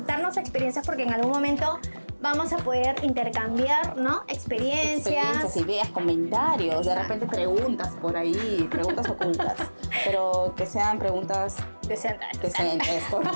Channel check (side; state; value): both; inverted; correlation -1.00